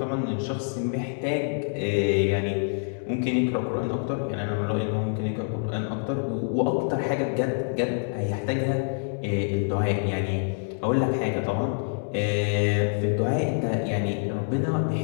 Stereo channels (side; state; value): right; silent; 61 dB below the other